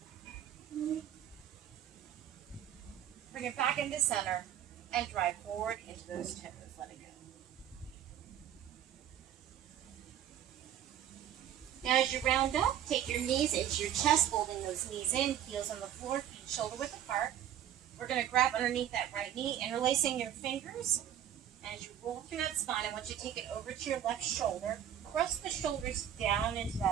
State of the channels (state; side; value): quieter; left; 10.5 dB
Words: Bring it back into center and drive forward into those toes. Let it go. Now as you round up, take your knees into your chest, folding those knees in, heels on the floor, feet shoulder width apart. We're going to grab underneath that right knee, interlacing your fingers. And as you roll through that spine, I want you to take it over to your left shoulder. Press the shoulders down into